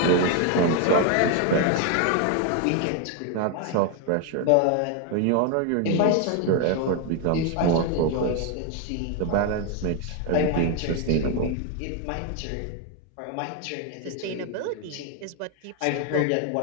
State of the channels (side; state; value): both; different; correlation 0.01